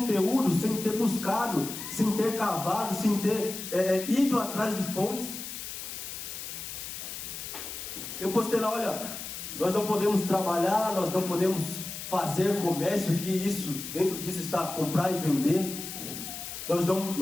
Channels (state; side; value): noise; left; hiss, 8 dB below the sound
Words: sem ter buscado, sem ter cavado, sem ter ido atrás de fontes. Eu postei lá: olha, nós não podemos trabalhar, nós não podemos fazer comércio, que isso, dentro disso está comprar e vender. Nós